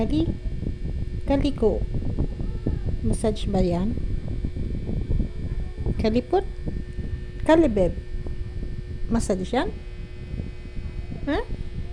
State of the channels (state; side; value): identical; both; correlation 1.00